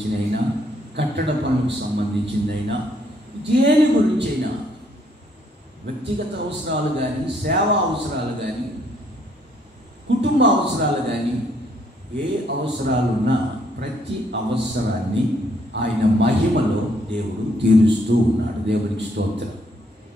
కట్టడ పనులకు సంబంధించిందైనా, దేని గురించైనా, వ్యక్తిగత అవసరాలు కానీ, సేవా అవసరాలు కానీ, కుటుంబ అవసరాలు కానీ, ఏ అవసరాలున్నా ప్రతి అవసరాన్ని ఆయన మహిమలో దేవుడు తీరుస్తూ ఉన్నాడు. దేవునికి స్తోత్రం.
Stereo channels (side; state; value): both; normal; correlation 0.68